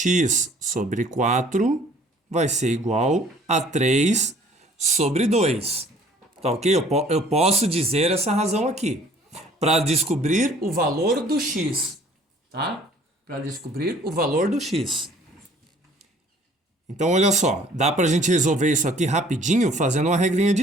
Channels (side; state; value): both; normal; correlation 0.54